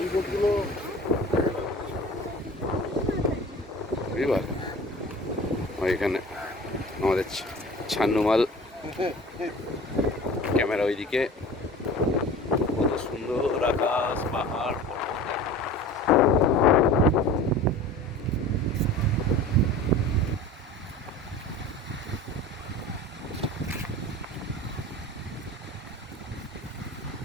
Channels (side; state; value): both; normal; correlation 0.40